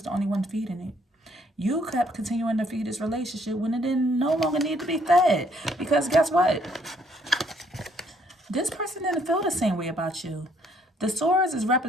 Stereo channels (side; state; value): both; normal; correlation 0.67